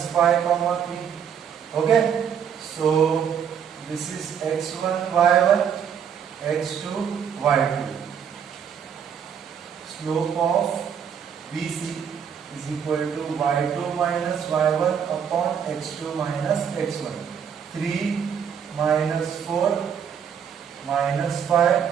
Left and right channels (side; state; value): left; quieter; 7.9 dB